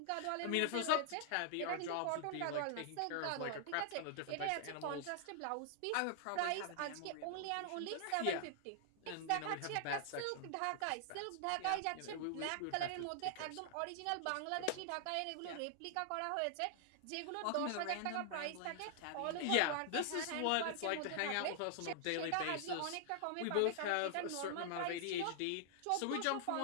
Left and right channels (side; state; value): both; different; correlation -0.01